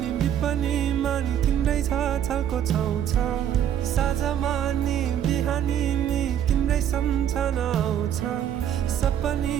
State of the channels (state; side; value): quieter; left; 9.9 dB